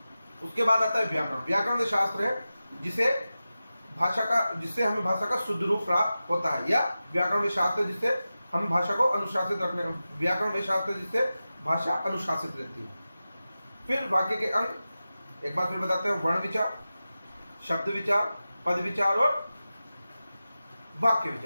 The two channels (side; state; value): both; inverted; correlation -0.94